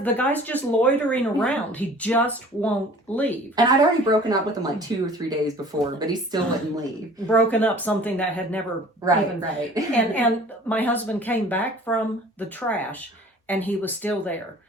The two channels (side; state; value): both; normal; correlation 0.48